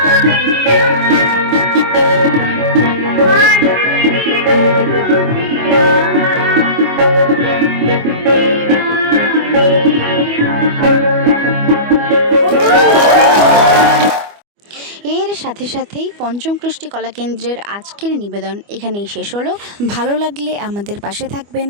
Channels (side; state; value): left; late; 25 ms